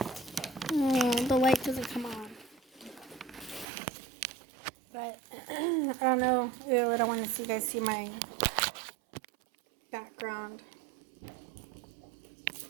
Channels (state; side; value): drops out; left; at 3.7 s